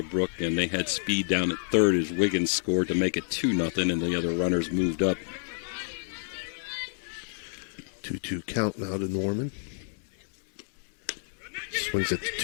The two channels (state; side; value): silent; right; digital silence